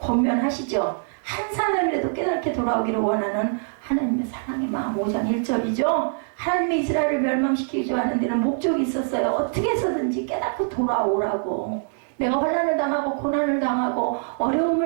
한 사람이라도 깨닫게 돌아오기를 원하는 하나님의 사랑의 마음 5장 1절이죠. 하나님의 이스라엘을 멸망시키기 하는 데는 목적이 있었어요. 어떻게 해서든지 깨닫고 돌아오라고. 내가 환난을 당하고 고난을 당하고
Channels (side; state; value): left; silent; digital silence